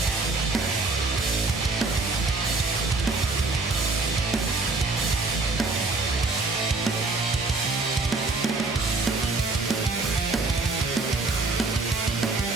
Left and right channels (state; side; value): quieter; left; 3.5 dB